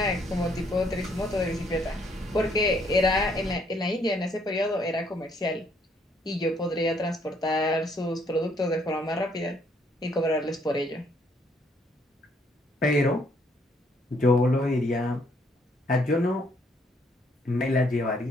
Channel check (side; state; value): both; normal; correlation 0.68